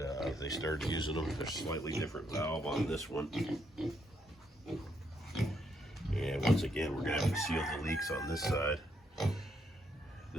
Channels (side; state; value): both; normal; correlation 0.75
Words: they started using them. There's a slightly different valve on this one. And once again, we're gonna have to seal the leaks on this side.